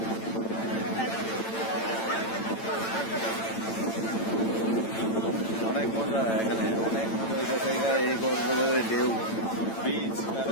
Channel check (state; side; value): late; right; 8.9 ms